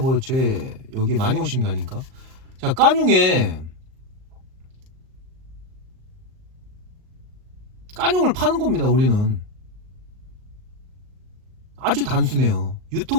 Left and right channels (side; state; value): left; late; 38 ms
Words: 여기 많이 오신 게 아닌가? 자, 까뇽을 파는 겁니다. 우리는 아주 단순해요.